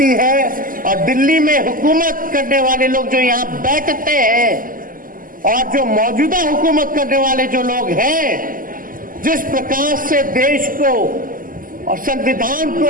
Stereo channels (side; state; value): left; late; 0.41 ms